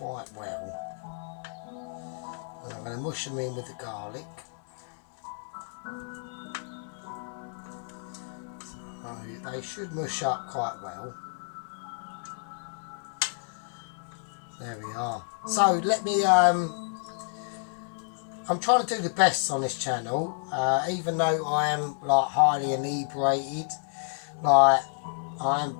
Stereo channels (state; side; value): silent; right; digital silence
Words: well. And I'm going to mush them in with the garlic. So they should mush up quite well. There we are. So let me, I'm trying to do the best on this channel, even though I am like highly inebriated, like I am a